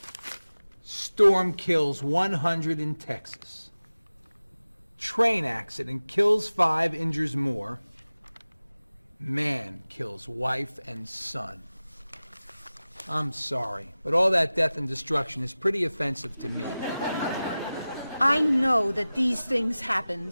Storm kills 100 in Texas. Train accident kills 5, injures more. Man kills wife and son. I'm sorry, but all that death and destruction is pretty offensive to me. I know that these things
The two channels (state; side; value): inverted; both; correlation -0.97